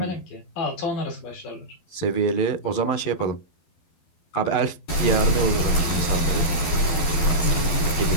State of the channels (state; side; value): late; right; 11 ms